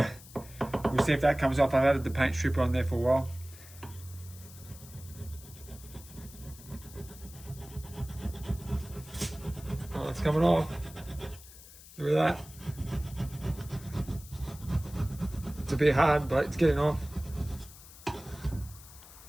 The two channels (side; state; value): left; noise; hiss, 19 dB below the sound